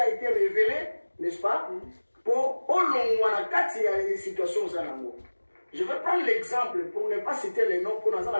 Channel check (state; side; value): inverted; both; correlation -1.00